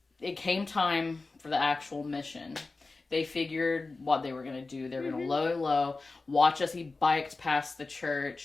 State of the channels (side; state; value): right; quieter; 3.7 dB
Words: came time for the actual mission. They figured what they were going to do. They were going to low, watch as he biked past the